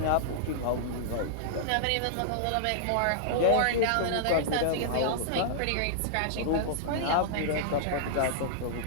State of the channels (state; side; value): different; both; correlation -0.02